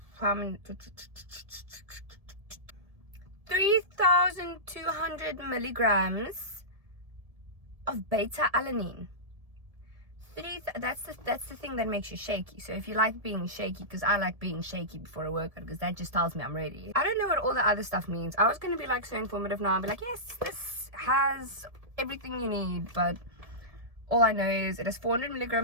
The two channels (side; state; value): left; late; 1.7 ms